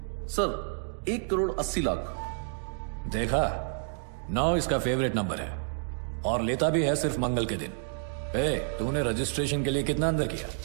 सर 1 करोड़ 80 लाख। देखा, 9 इसका फेवरेट नंबर है और लेता भी है सिर्फ मंगल के दिन। तूने रजिस्ट्रेशन के लिए कितना अंदर किया?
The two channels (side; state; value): left; silent; digital silence